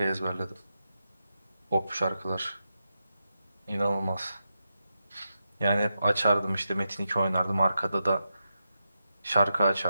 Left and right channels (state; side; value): inverted; both; correlation -0.87